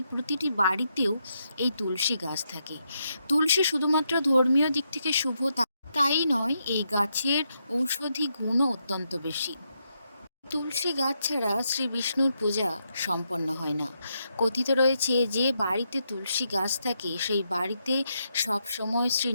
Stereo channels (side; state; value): both; inverted; correlation -0.81